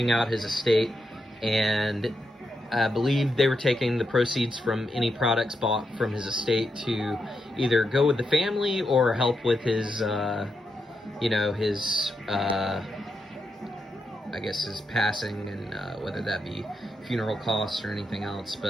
out his estate, and I believe they were taking the proceeds from any products bought from his estate to either go with the family or help with his, you know, his, I guess his passing, and whether that be funeral costs or anything else.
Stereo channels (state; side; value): normal; both; correlation 0.84